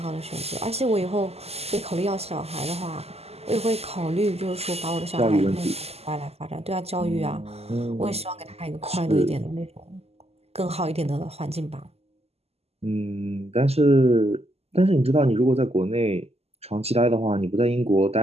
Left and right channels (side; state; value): left; late; 0.29 ms